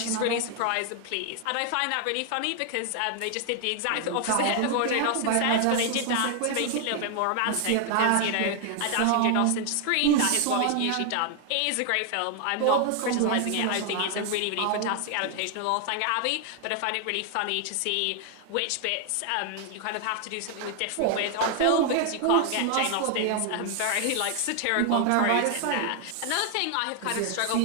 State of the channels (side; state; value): both; different; correlation 0.00